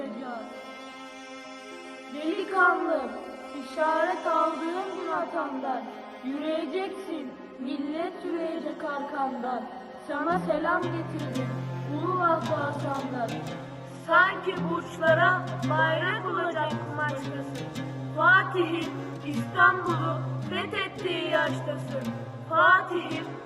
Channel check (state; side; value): identical; both; correlation 1.00